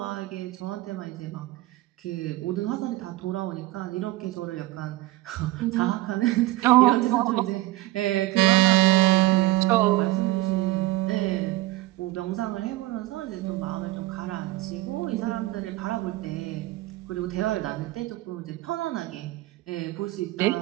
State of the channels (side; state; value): left; quieter; 18.7 dB